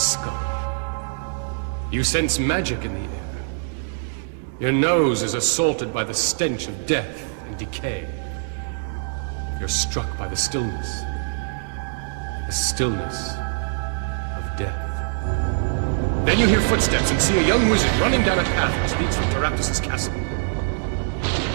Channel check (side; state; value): left; silent; digital silence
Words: You sense magic in the air. Your nose is assaulted by the stench of death and decay. You're struck by the stillness. The stillness of death. Then you hear footsteps and see a young wizard running down a path which leads from Teraptus' castle.